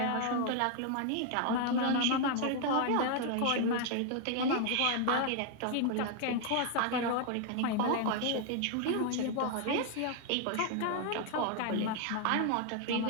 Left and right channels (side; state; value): both; different; correlation 0.00